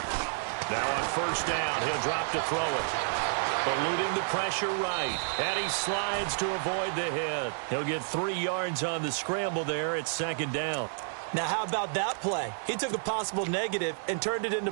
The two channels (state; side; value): silent; left; digital silence